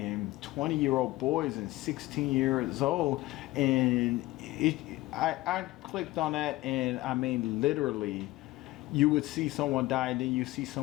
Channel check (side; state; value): right; quieter; 18.6 dB